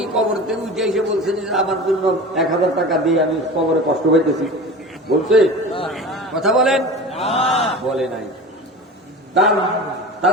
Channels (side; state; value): both; normal; correlation 0.34